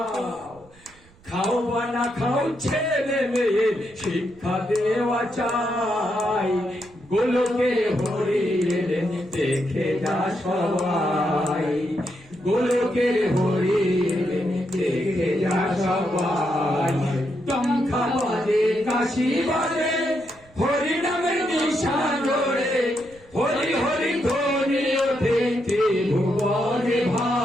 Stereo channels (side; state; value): right; noise; rumble, 27 dB below the sound